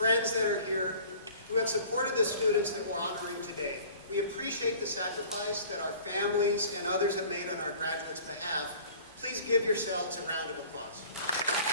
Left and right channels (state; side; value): inverted; both; correlation -0.47